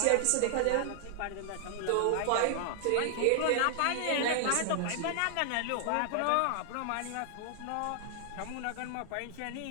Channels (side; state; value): both; different; correlation 0.00